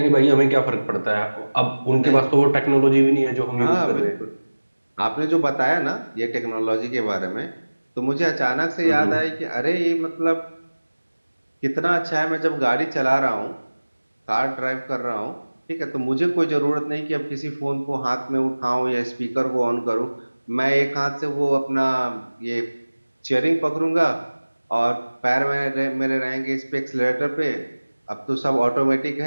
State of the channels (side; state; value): both; inverted; correlation -1.00